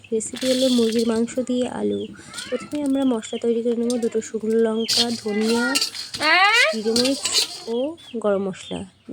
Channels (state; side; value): identical; both; correlation 1.00